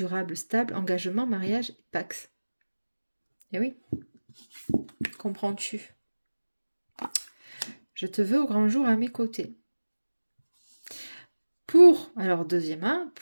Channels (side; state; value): both; inverted; correlation -1.00